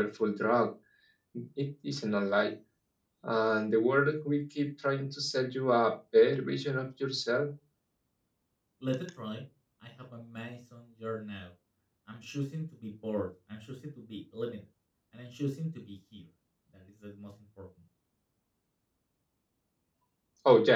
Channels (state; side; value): identical; both; correlation 1.00